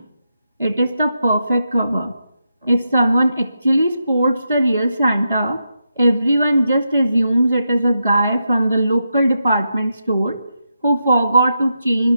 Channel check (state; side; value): inverted; both; correlation -0.85